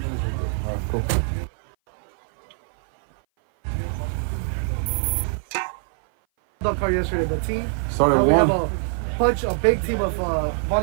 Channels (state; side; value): silent; left; 58 dB below the other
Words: Alright, cool. Dog car yesterday, the team. Started We have one. a big team of